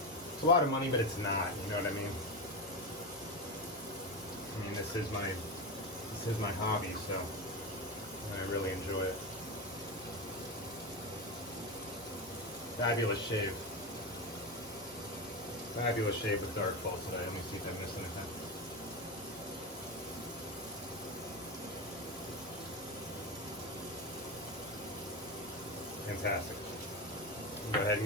It's a lot of money, but it's not, you know what I mean? I mean, this is my hobby, so I really enjoy it. Fabulous shave. Fabulous shave with Darkfall today. Let me see if I missed anything. Fantastic. Go ahead and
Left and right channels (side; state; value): both; normal; correlation 0.17